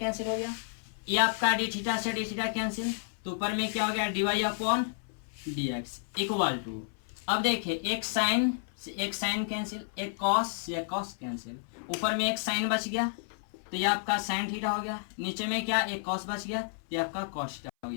हो गया, ये आपका डी थीटा से डी थीटा कैंसिल, तो ऊपर में क्या हो गया dy upon dx equal to, अब देखिए एक साइन कैंसिल, एक कॉस या कॉस कैंसिल, ऊपर में एक साइन बच गया तो ये आपका साइन थीटा हो गया, नीचे में क्या एक कॉस बच गया तो ये आपका कॉस थीटा हो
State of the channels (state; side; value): silent; right; 57 dB below the other